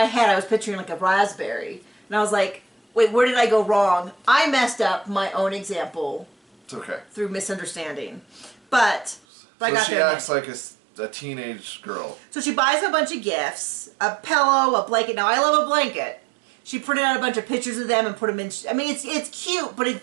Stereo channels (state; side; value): drops out; left; at 9.2 s